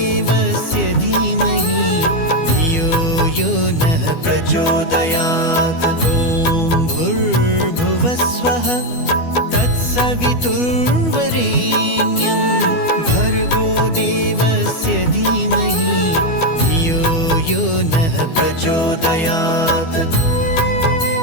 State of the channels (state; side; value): late; right; 12 ms